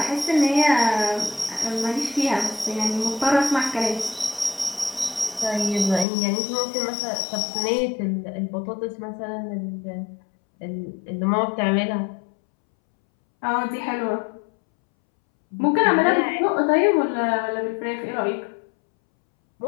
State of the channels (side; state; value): right; drops out; at 6.1 s